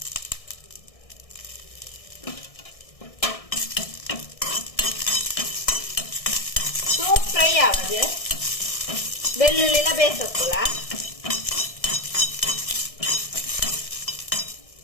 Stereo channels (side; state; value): right; late; 1.6 ms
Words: ಸೋಪ್ ಫ್ರೈ ಆವದು ಬೆಳ್ಳುಳ್ಳಿ ಎಲ್ಲ ಬೇಯಿಸೋಕ್ಕಲ್ಲ